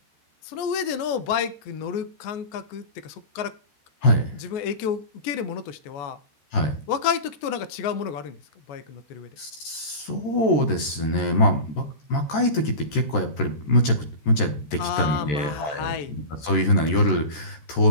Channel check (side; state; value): right; late; 13 ms